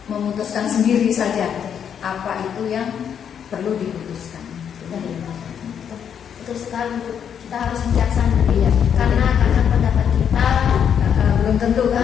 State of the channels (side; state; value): right; quieter; 8.2 dB